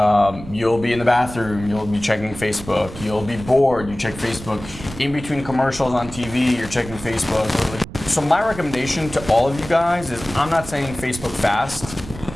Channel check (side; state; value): right; noise; rumble, 14 dB below the sound